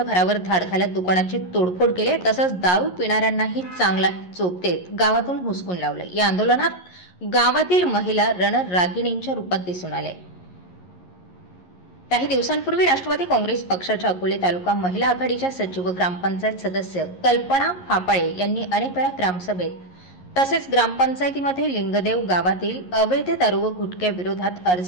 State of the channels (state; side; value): late; right; 11 ms